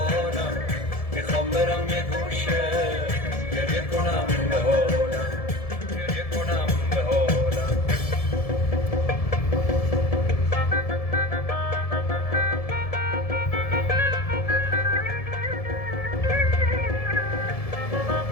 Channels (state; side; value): late; right; 1.7 ms